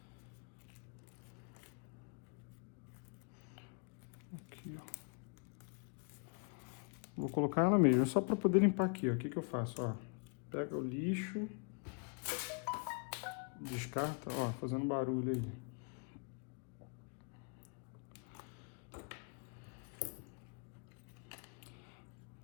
vou colocar ela mesmo, só para poder limpar aqui, ó. O que que eu faço, ó? Pega o lixo, descarta, ó, fazendo barulho aí.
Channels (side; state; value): right; quieter; 39.9 dB